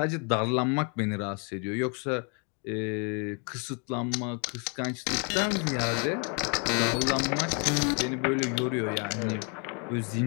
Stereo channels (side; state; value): right; quieter; 36.6 dB